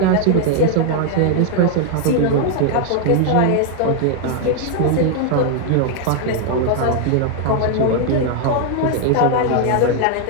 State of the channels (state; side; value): different; both; correlation 0.00